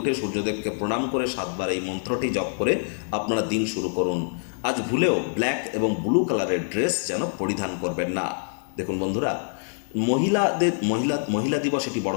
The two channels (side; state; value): right; silent; 62 dB below the other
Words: সূর্যদেবকে প্রণাম করে 7 বার এই মন্ত্রটি জপ করে আপনারা দিন শুরু করুন। আজ ভুলেও ব্ল্যাক এবং ব্লু কালারের ড্রেস যেন পরিধান করবেন না। দেখুন বন্ধুরা, মহিলা দিবস এটি বড়